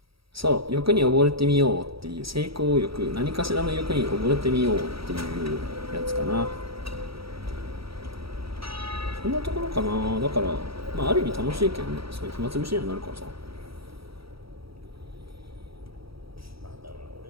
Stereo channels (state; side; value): late; left; 0.75 ms